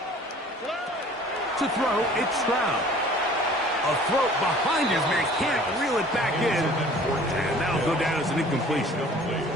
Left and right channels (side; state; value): both; normal; correlation 0.50